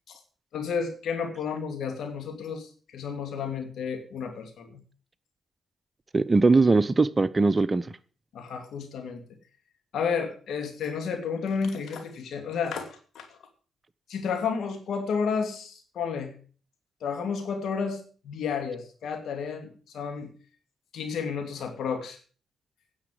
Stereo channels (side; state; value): both; normal; correlation 0.80